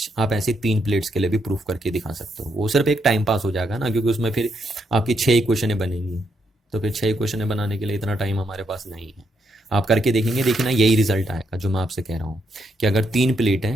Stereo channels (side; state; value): both; normal; correlation 0.78